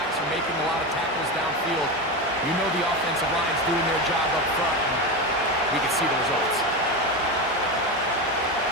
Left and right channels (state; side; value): normal; both; correlation 0.18